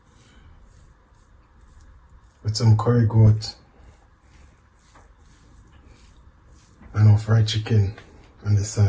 with some curry goat and our fried chicken on the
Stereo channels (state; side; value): identical; both; correlation 1.00